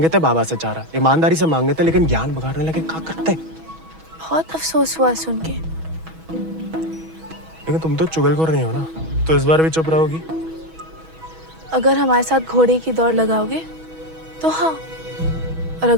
थे बाबा से चारा, ईमानदारी से मांगे थे, लेकिन ज्ञान बगाड़ने लगे। क्या करते? बहुत अफसोस हुआ सुन के। लेकिन तुम तो चुगलखोर नहीं हो ना, तो इस बार भी चुप रहोगी? अगर हमारे साथ घोड़े की दौड़ लगाओगे तो हाँ, और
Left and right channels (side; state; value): left; late; 6.2 ms